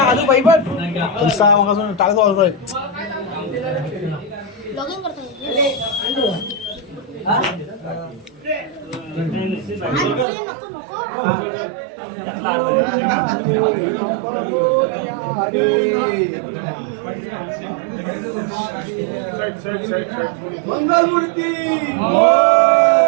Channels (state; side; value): drops out; left; at 10.2 s